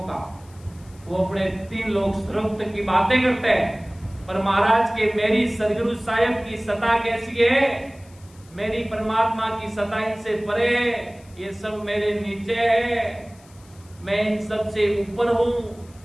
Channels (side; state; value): left; noise; hiss, 27 dB below the sound